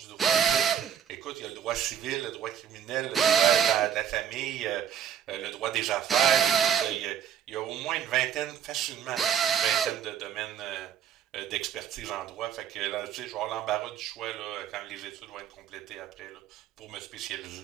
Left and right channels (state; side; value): quieter; left; 8.8 dB